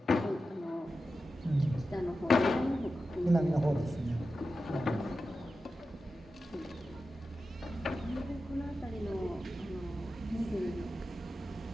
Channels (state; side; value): normal; both; correlation 0.92